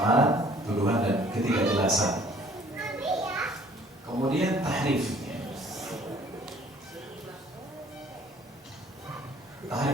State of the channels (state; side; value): normal; both; correlation 0.56